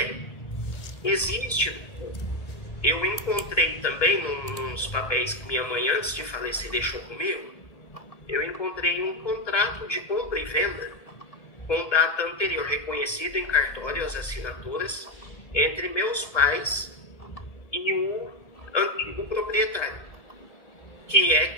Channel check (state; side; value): late; right; 1.8 ms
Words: existe. Eu encontrei também nos papéis que minha mãe, antes de falecer, deixou comigo, eu encontrei um contrato de compra e venda com data anterior, reconhecido em cartório, as assinaturas, entre meus pais e o antigo proprietário, que é